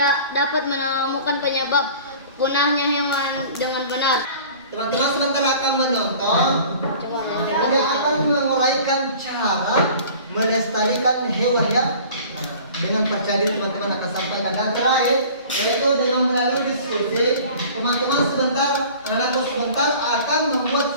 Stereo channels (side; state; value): both; inverted; correlation -0.45